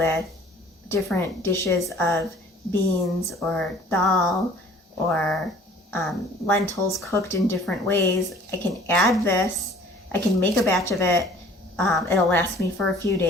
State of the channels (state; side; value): normal; both; correlation 0.51